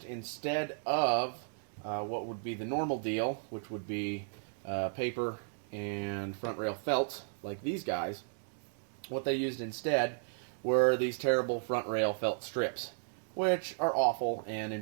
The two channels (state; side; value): silent; left; digital silence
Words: instead of what would be the normal deal, which would be paper and front rail felt like these guys. What they used instead were these terrible front rail felt strips, which are awful and